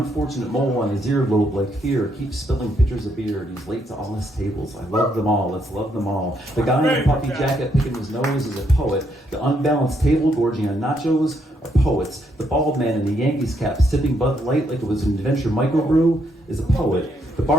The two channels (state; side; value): normal; both; correlation 0.75